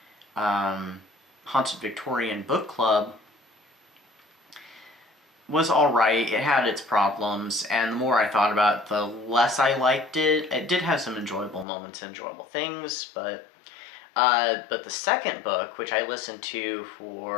Haunted Victorian Book Club, was alright. It had its problems, and the more I thought about it, the less I liked it. It did have some enjoyable moments, enjoyable things, but the second book, which I listened to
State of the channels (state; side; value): drops out; right; at 11.7 s